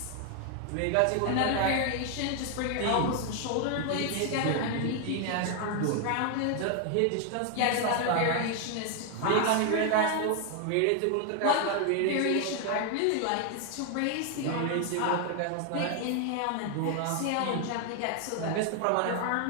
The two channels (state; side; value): different; both; correlation 0.00